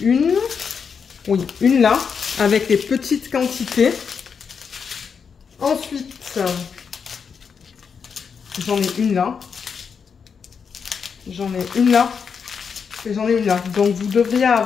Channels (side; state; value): right; quieter; 6.3 dB